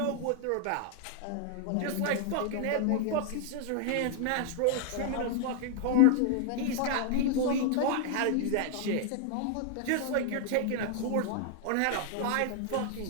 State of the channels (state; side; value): different; both; correlation 0.00